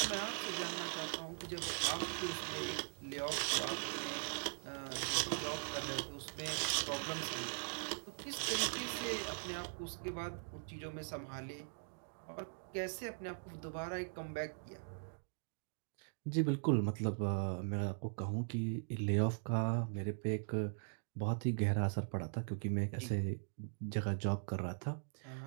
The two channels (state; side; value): silent; left; digital silence